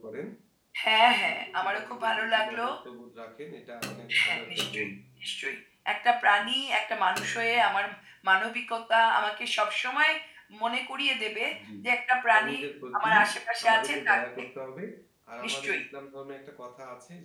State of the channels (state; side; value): identical; both; correlation 1.00